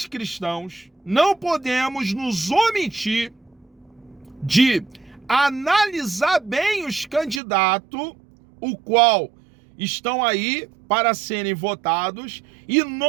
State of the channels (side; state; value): left; drops out; at 7.4 s